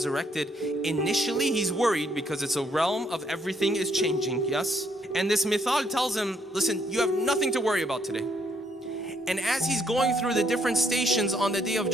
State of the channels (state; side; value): normal; both; correlation 0.70